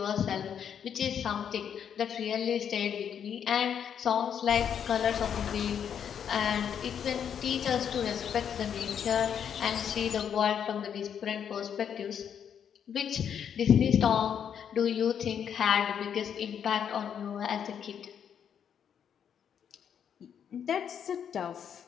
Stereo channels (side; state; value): right; quieter; 8.3 dB